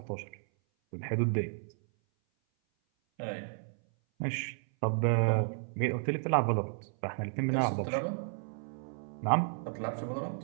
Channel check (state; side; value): silent; left; 56 dB below the other